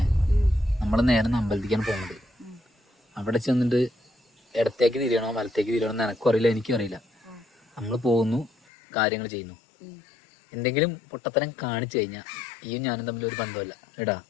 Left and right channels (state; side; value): drops out; right; at 8.5 s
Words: നമ്മൾ നേരെ അമ്പലത്തിക്കാണ് പോകുന്നത്. അവിടെ ചെന്നിട്ട് ഇടത്തേക്ക് തിരിയണോ വലത്തേക്ക് തിരിയണോ എന്ന് എനക്കും അറിയില്ല, എനിക്കും അറിയില്ല. നമ്മൾ പോകുന്നു, കാര്യങ്ങൾ ചെയ്യുന്നു. എന്തെങ്കിലും പൊട്ടത്തരം കാണിച്ചു കഴിഞ്ഞാൽ ഈയും ഞാനും തമ്മിൽ ഒരു ബന്ധമല്ല എടാ.